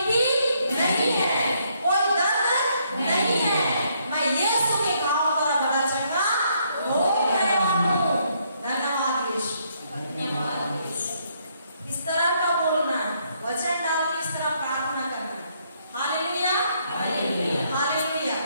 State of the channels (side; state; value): both; inverted; correlation -0.72